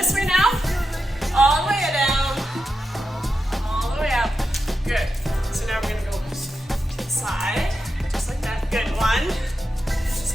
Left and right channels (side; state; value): both; normal; correlation 0.88